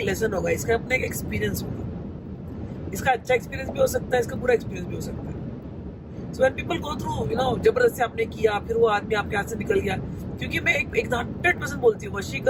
लेसन होगा, इसका अपना एक एक्सपीरियंस होगा। इसका अच्छा एक्सपीरियंस भी हो सकता है, इसका बुरा एक्सपीरियंस भी हो सकता है। So when people go through, जबरदस्ती आपने किया, फिर वो आदमी आपके हाथ से निकल गया। क्योंकि मैं एक 100% बोलती हूँ,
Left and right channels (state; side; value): identical; both; correlation 1.00